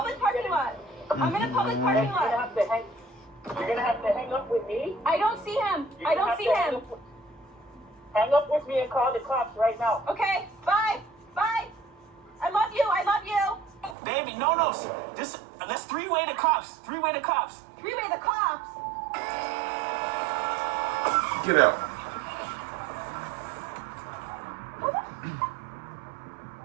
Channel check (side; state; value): left; drops out; at 14.0 s